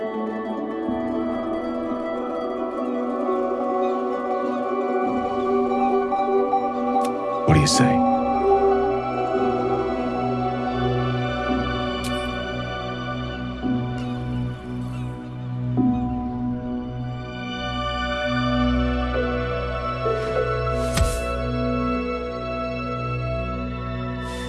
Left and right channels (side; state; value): both; identical; correlation 1.00